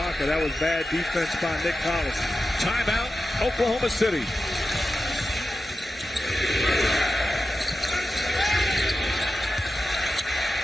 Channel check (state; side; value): normal; both; correlation 0.92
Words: That was bad defense by Nick Collins. Timeout, Oklahoma City.